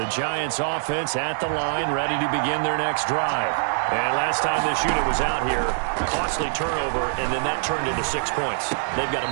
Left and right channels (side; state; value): left; silent; digital silence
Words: Giants offense at the line, ready to begin their next drive. And last time this unit was out here, costly turnover, and then that turned into 6 points. They've got to